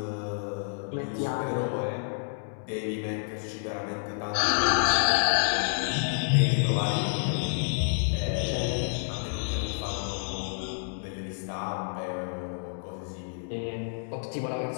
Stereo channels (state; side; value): silent; right; digital silence